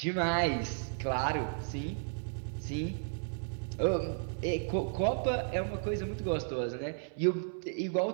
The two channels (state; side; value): silent; left; 55 dB below the other